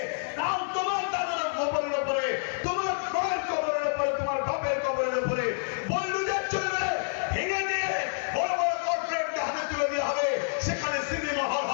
কাল তোমার দাদার কবরের উপরে, তোমার মায়ের কবরের উপরে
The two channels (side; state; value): right; silent; 59 dB below the other